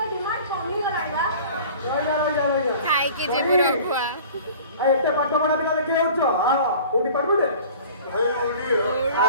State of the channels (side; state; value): both; inverted; correlation -0.44